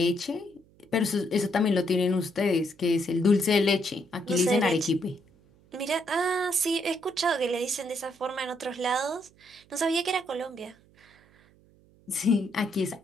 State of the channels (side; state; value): right; noise; hum, 29 dB below the sound